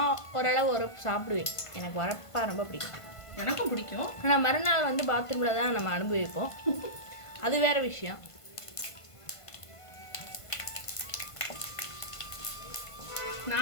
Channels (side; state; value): right; late; 1.5 ms